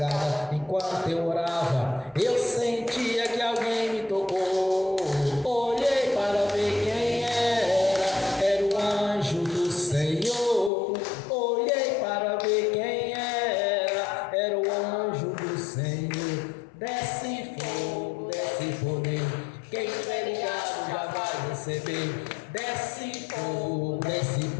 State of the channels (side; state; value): right; drops out; at 10.7 s